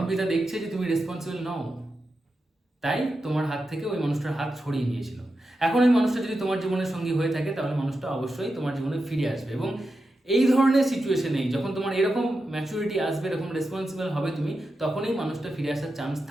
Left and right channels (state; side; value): normal; both; correlation 0.89